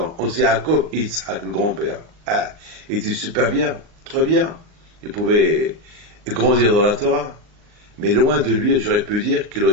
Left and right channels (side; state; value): left; late; 38 ms